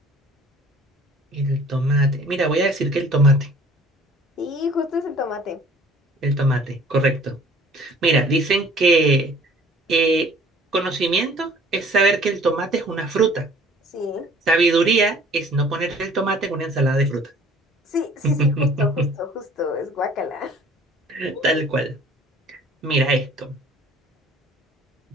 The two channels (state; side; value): normal; both; correlation 0.52